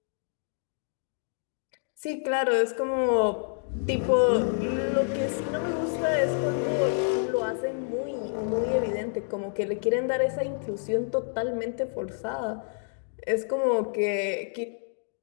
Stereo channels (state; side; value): silent; right; digital silence